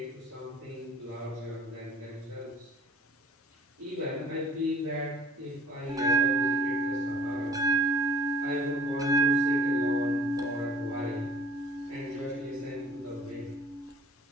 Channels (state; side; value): normal; both; correlation 0.52